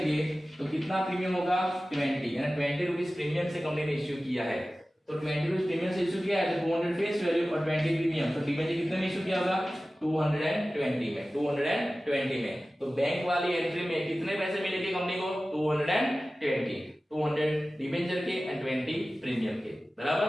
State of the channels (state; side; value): normal; both; correlation 0.96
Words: तो कितना प्रीमियम होगा 20, यानी 20 रुपीज प्रीमियम से कंपनी ने इश्यू किया है, तो 20 रुपीज प्रीमियम से इश्यू किया है तो 200 फेस वैल्यू और 20 प्रीमियम, तो डिबेंचर कितने में इश्यू किया होगा 220 में, 220 में, तो बैंक वाली एंट्री में कितने पैसे मिलेंगे कंपनी को 220, 200 डिबेंचर के एंड 20 प्रीमियम के, बराबर।